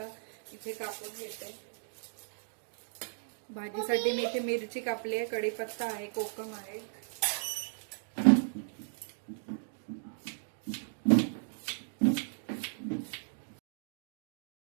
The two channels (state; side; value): silent; left; digital silence